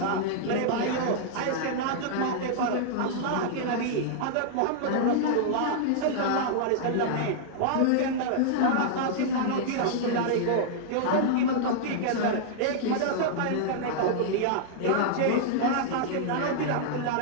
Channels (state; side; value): different; both; correlation -0.01